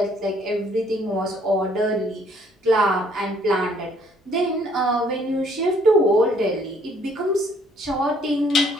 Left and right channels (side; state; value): both; normal; correlation 0.63